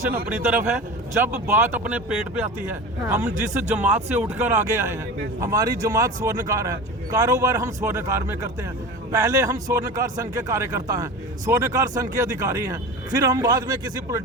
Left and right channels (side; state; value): both; normal; correlation 0.31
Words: अपनी तरफ है, जब बात अपने पेट पे आती है। हाँ। हम जिस जमात से उठकर आगे आए हैं, हमारी जमात स्वर्णकार है, कारोबार हम स्वर्णकार में करते हैं। पहले हम स्वर्णकार संघ के कार्यकर्ता हैं, स्वर्णकार संघ के अधिकारी हैं, फिर हम बाद में किसी